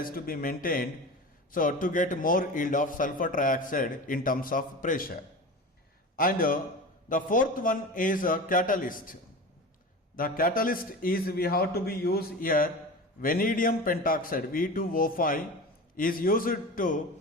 to be maintained. So to get more yield of sulfur trioxide in terms of pressure. And the fourth one is a catalyst. The catalyst is we have to be used here. Vanadium pentoxide V2O5 is used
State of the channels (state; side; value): normal; both; correlation 0.31